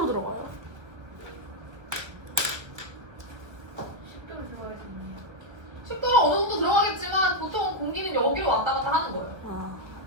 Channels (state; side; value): late; left; 1.4 ms